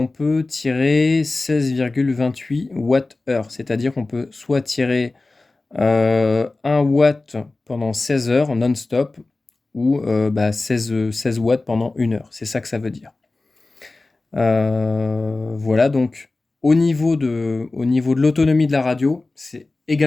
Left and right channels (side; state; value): right; quieter; 3.3 dB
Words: peut tirer 16,28 Wh. C'est-à-dire qu'on peut soit tirer 1 watt pendant 16 heures non-stop ou 16 watts pendant 1 heure. C'est ça que ça veut dire. Voilà, donc au niveau de l'autonomie de la radio, c'est